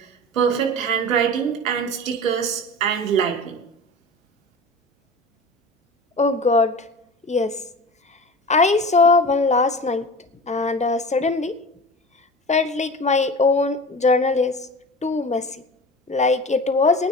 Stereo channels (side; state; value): both; normal; correlation 0.35